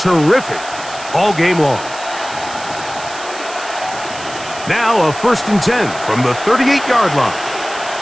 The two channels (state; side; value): noise; right; hiss, 14 dB below the sound